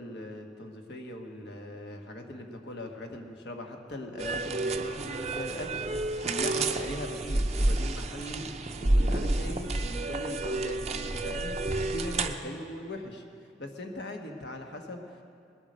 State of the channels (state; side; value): normal; both; correlation 0.70